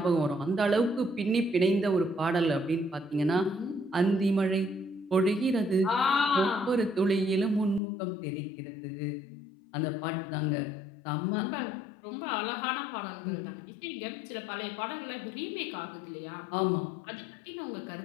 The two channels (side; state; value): right; drops out; at 7.8 s